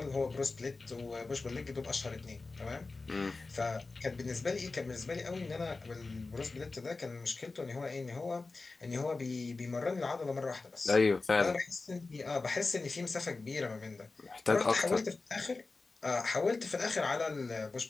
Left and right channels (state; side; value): quieter; right; 3.7 dB